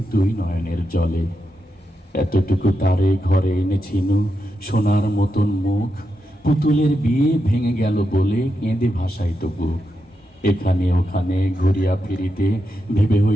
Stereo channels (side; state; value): both; normal; correlation 0.86